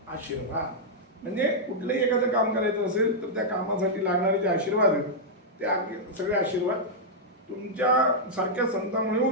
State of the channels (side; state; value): both; normal; correlation -0.06